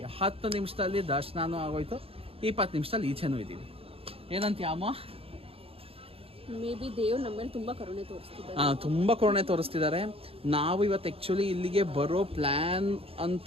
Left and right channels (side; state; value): left; late; 0.28 ms